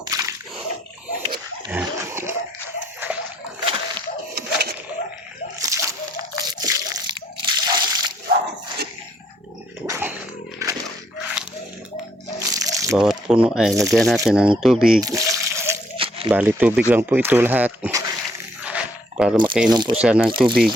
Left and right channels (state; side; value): normal; both; correlation 0.69